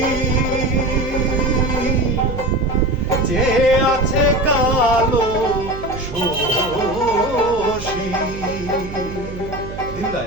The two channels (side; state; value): right; noise; hum, 11 dB below the sound